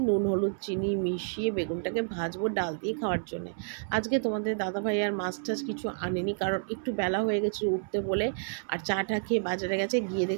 নুন হলুদ চিনি মিশিয়ে বেগুনটাকে ভাজবো ডাল দিয়ে খাওয়ার জন্য। আজকে তোমাদের দাদাভাই আর মাছ টাছ কিছু আনেনি, কারণ একটু বেলা হয়ে গেছে উঠতে বলে। আর চাটা খেয়ে বাজারে গেছে, গিয়ে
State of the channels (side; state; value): left; silent; 58 dB below the other